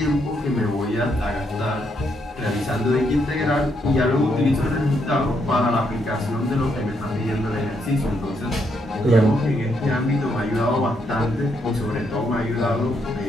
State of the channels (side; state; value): both; normal; correlation 0.76